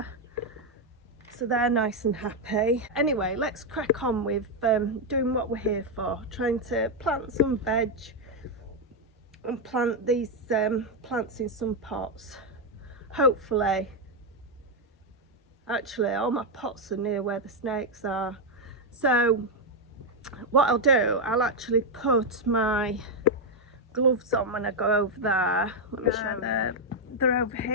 so they're nice and happy. Anyway, let's crack on with doing what we're here for, trying to plant some veg and plant these plants in some pots. Hopefully, actually all my pots are near where the snakes are, so what I'll do, I'll actually put my gloves on when I go over there. Let me show you. They're over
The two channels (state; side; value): normal; both; correlation 0.02